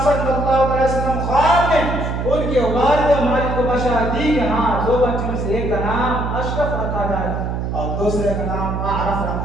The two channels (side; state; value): right; noise; hum, 2 dB below the sound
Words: صلی اللہ علیہ وسلم خواب میں ان کے والد ماجد کو بشارت دی کہ ہاں 2 بچوں میں سے ایک کا نام اشرف رکھا جائے اور دوسرے کا نام اعرف